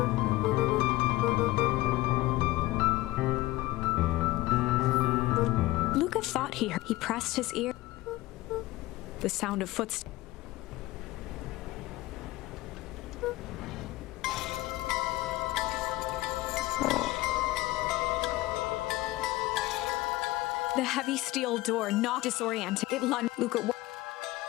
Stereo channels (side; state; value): right; quieter; 18.6 dB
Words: Luca thought he heard. He pressed his ear. The sound of footsteps. The heavy steel door knocked, disoriented. It lunged. Luca.